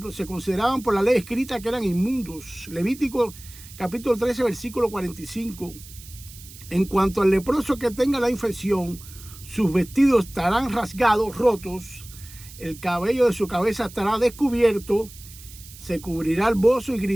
se consideraban por la ley escrita que eran inmundos. Levítico capítulo 13, versículo 45. En cuanto al leproso que tenga la infección, sus vestidos estarán rasgados, rotos, el cabello de su cabeza estará descubierto, se cubrirá el bozo y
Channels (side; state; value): right; noise; hiss, 18 dB below the sound